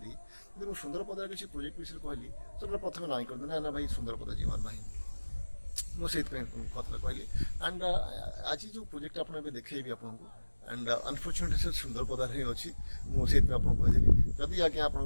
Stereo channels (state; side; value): inverted; both; correlation -1.00